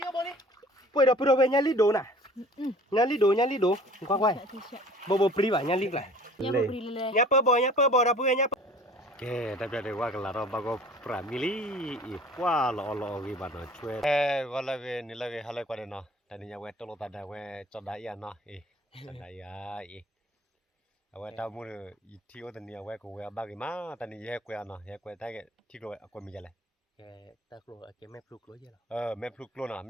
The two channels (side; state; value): both; normal; correlation 0.47